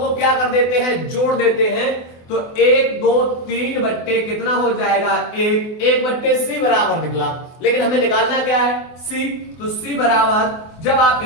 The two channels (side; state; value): right; late; 24 ms